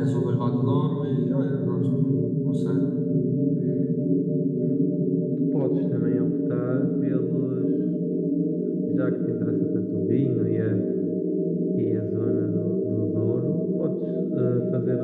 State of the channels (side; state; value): both; identical; correlation 1.00